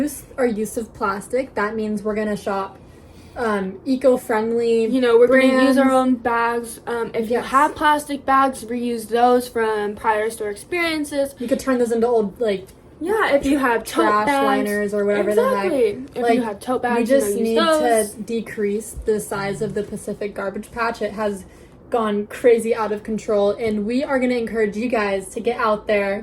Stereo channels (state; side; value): identical; both; correlation 1.00